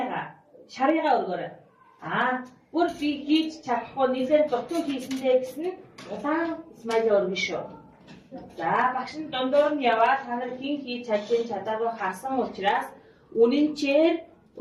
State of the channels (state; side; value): identical; both; correlation 1.00